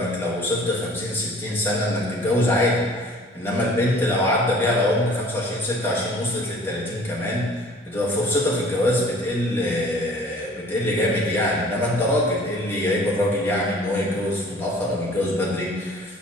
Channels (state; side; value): normal; both; correlation 0.50